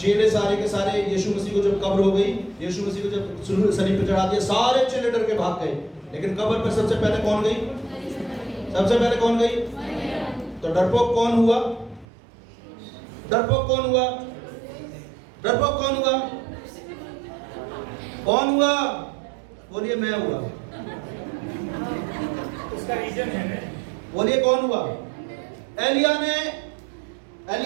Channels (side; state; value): left; drops out; at 12.1 s